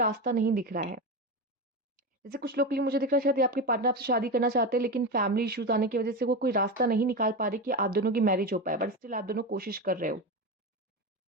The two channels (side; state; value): both; normal; correlation 0.19